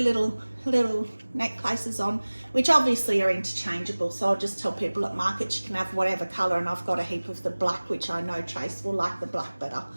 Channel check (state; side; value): inverted; both; correlation -1.00